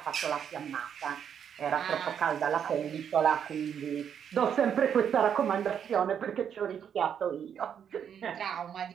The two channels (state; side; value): quieter; left; 8.3 dB